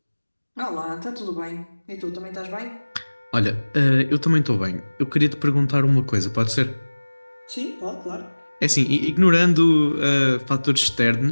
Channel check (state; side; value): inverted; both; correlation -1.00